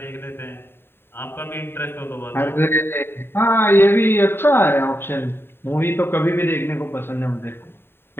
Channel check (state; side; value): late; right; 0.11 ms